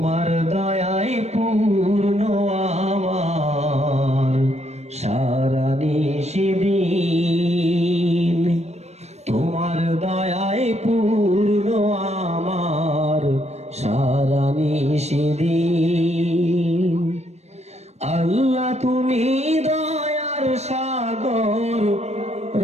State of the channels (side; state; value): left; late; 0.32 ms